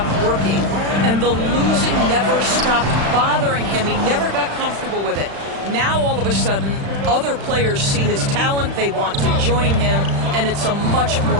working, and the losing never stopped bothering him. He never got comfortable with it. Now, all of a sudden, other players see his talent, they want to join him, and it's a much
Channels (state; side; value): late; left; 35 ms